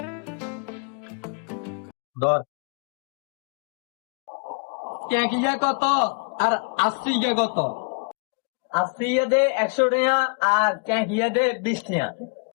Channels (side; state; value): right; quieter; 36.5 dB